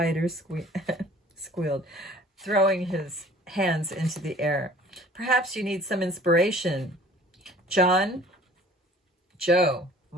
squealed, throwing his hands into the air. Perhaps you need some inspiration. Joe,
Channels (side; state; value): both; normal; correlation 0.50